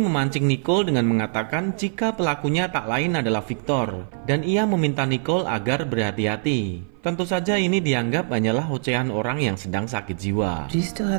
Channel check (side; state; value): left; silent; 57 dB below the other